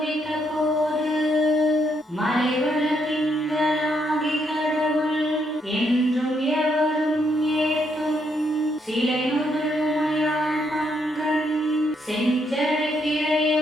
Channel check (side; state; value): both; normal; correlation 0.75